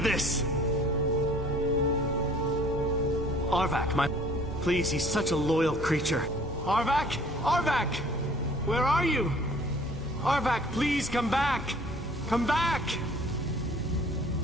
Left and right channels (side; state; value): both; normal; correlation 0.52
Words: this. Arvak, my... Please, he's such a loyal creature. Arvak? Arvak! Where are you? Arvak, please come back! Come back!